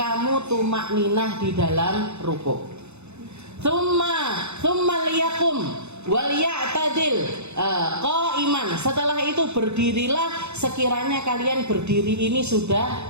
tumakninah di dalam rukuk. Tsumma liyakum wal ya'tadil qaiman. Setelah itu berdirilah sekiranya kalian berdiri ini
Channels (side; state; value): left; late; 0.81 ms